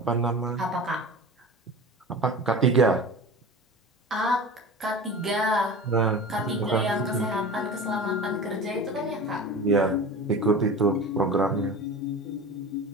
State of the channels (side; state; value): both; normal; correlation 0.34